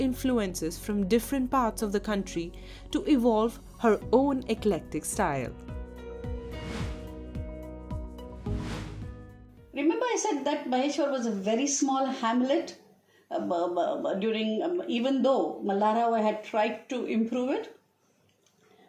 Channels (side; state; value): both; identical; correlation 1.00